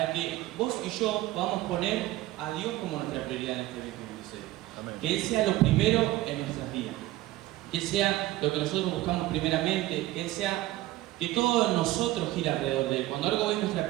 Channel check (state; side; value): quieter; left; 16.8 dB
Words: que vos y yo podamos poner a Dios como nuestra prioridad en este 2026. Amén. Que Él sea lo primero en nuestras vidas, que Él sea lo que nosotros buscamos primeramente, que Él sea que todo en nosotros gira alrededor de Él. Cuando algo es nuestra